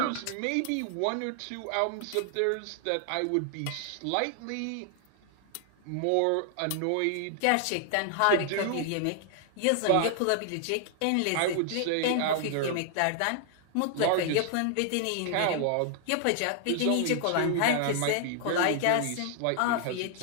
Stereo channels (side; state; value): both; different; correlation 0.00